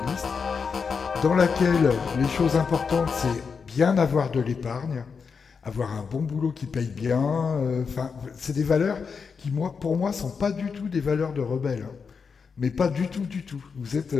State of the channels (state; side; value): quieter; right; 5.6 dB